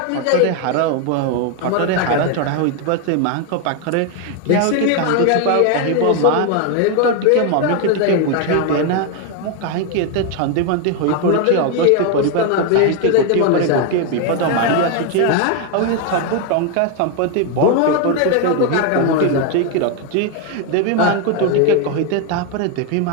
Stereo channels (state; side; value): different; both; correlation 0.01